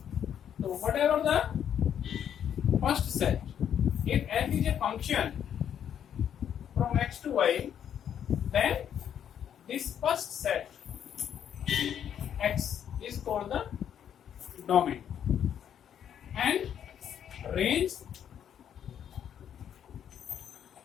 So whatever the first set, if f is a function from x to y, then this first set x is called the domain, and range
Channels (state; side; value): quieter; right; 9.2 dB